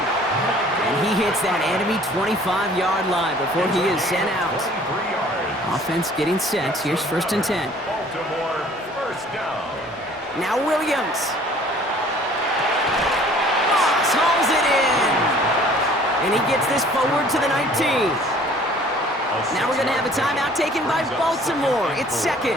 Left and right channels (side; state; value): both; normal; correlation 0.53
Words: And he hits that enemy 25-yard line before he is sent out. Offense getting set. Here's 1st and 10. Baltimore first down. Now Williams. Moss hauls it in. And he gets this forward to the 19. Now we're going to have a timeout taken by Baltimore. It's